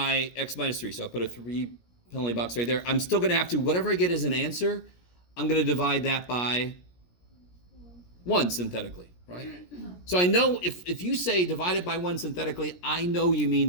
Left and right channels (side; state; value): right; late; 17 ms